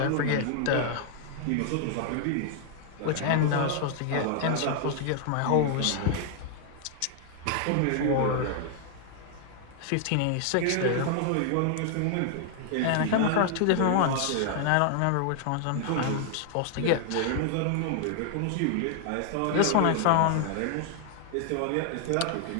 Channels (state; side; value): different; both; correlation 0.00